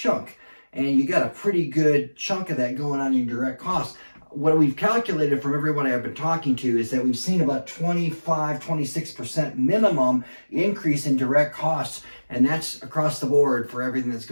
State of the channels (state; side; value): inverted; both; correlation -1.00